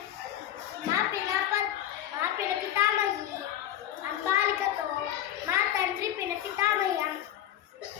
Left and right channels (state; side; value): quieter; right; 11.7 dB